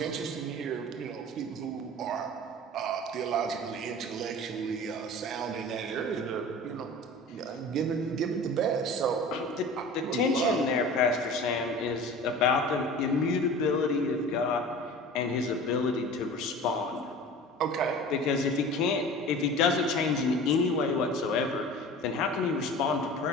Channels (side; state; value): both; normal; correlation 0.39